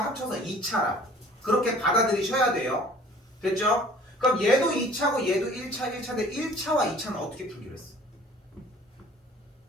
2차라. 그렇게 받아들이셔야 돼요. 됐죠? 그럼 얘도 2차고 얘도 1차, 1차인데 1차와 2차는 어떻게 풀기로 했어?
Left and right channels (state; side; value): normal; both; correlation 0.50